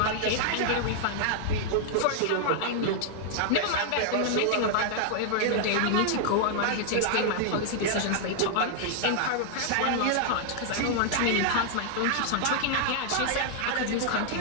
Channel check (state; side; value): different; both; correlation -0.01